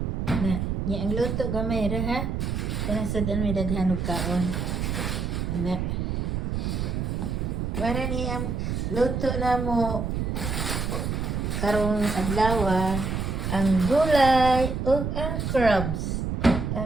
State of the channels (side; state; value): right; noise; rumble, 1 dB below the sound